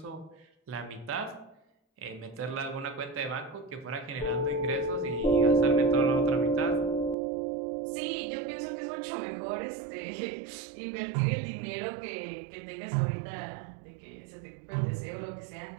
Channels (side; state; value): left; drops out; at 7.2 s